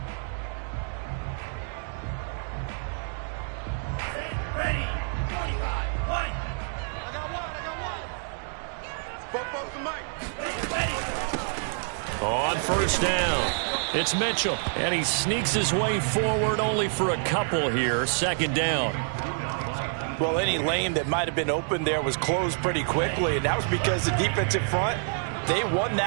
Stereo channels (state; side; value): silent; left; 58 dB below the other